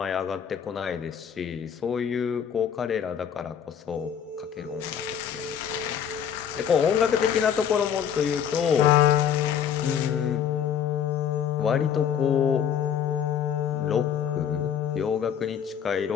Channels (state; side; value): quieter; right; 8.5 dB